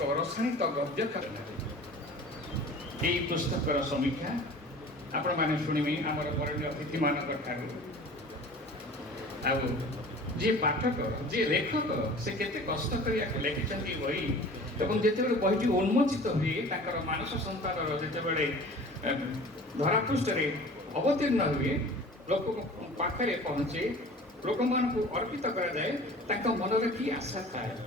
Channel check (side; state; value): both; normal; correlation 0.43